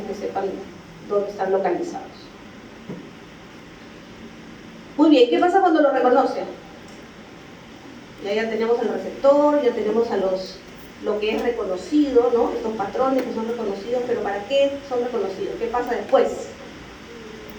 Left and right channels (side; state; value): both; identical; correlation 1.00